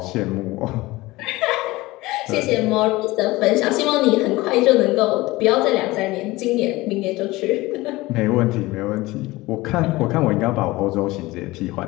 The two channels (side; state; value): right; quieter; 19.9 dB